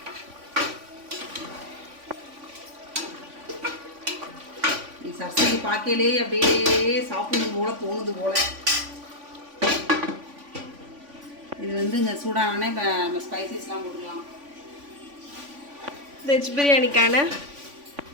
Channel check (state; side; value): late; left; 3.5 ms